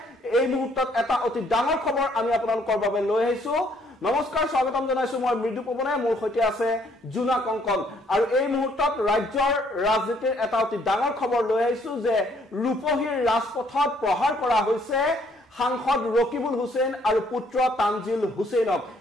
এই মুহূৰ্তত এটা অতি ডাঙৰ খবৰ আমি আপোনালোকৰ বাবে লৈ আহিছো নমস্কাৰ স্বাগতম জনাইছো মই মৃদু পৱনে মোৰ সৈতে আছে জুনা কংকন আৰু এই মুহূৰ্তত ৰাজ্যৰ ৰাজনীতিৰ এটা অতি ডাঙৰ খবৰ লৈ আহিছো যে ৰূপহীৰ ৰাজপথত প্ৰহাৰ কৰা হৈছে সাংসদ ৰকিবুল হুছেইন আৰু পুত্ৰ তানজিল হুছেইনক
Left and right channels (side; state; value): both; normal; correlation 0.65